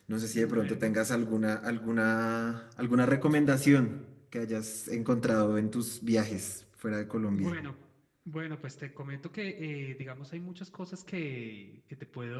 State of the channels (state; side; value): identical; both; correlation 1.00